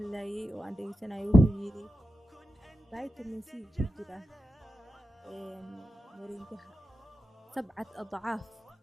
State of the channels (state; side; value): normal; both; correlation 0.90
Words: oo aan dhegeysanayay, wuxuu yiri vitamin C ku jira moringaha 7 adcaaf